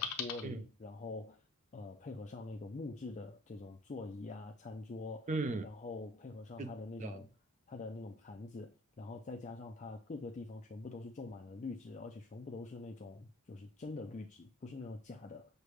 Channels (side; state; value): both; normal; correlation 0.53